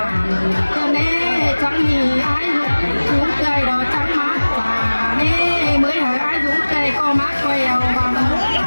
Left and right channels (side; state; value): both; inverted; correlation -1.00